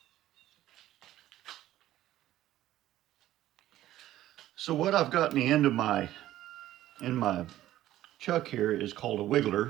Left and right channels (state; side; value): quieter; left; 13.9 dB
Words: So what I've got in the end of my chuck here is called a